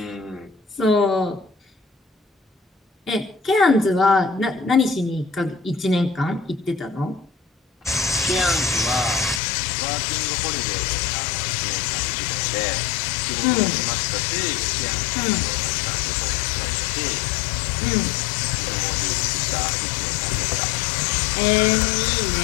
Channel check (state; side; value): drops out; right; at 9.4 s